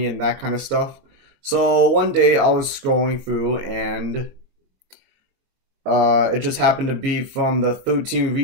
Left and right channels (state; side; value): late; left; 22 ms